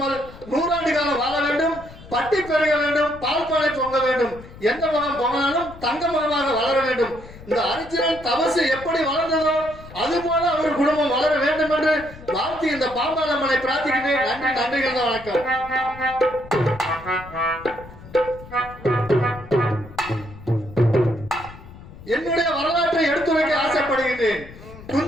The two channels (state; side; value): noise; left; rumble, 17 dB below the sound